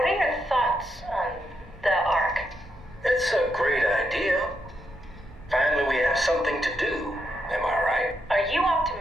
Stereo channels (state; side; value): normal; both; correlation 0.81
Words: are your thoughts on the Ark? It's a great idea. Finally, we have something to do. Am I right? Are you